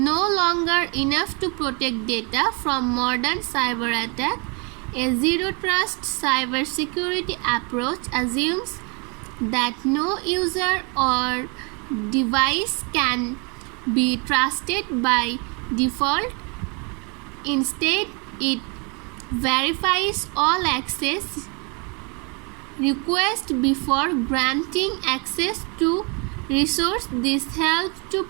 longer enough to protect data from modern cyber attack. A zero trust cybersecurity approach assumes that no user or device can be trusted by default. Instead, it verifies all access requests before granting access to resource. This helps to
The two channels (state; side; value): quieter; left; 32.8 dB